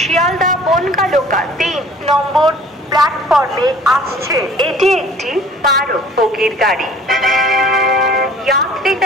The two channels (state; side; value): normal; both; correlation 0.50